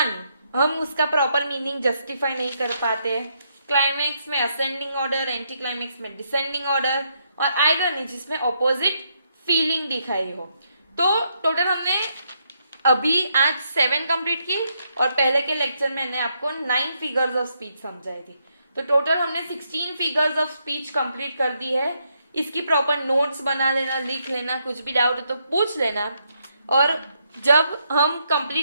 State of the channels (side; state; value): both; inverted; correlation -0.77